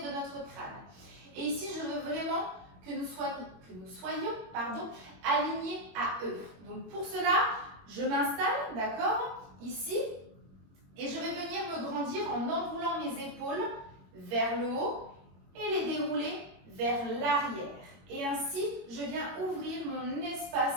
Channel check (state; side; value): late; left; 22 ms